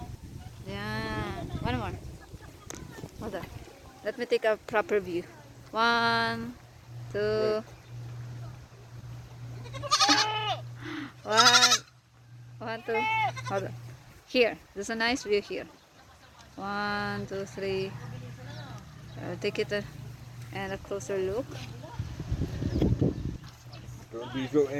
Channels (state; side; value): identical; both; correlation 1.00